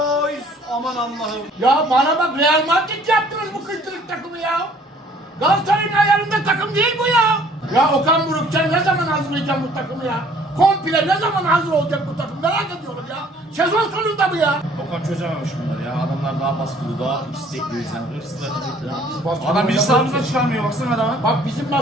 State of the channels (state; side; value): normal; both; correlation 0.57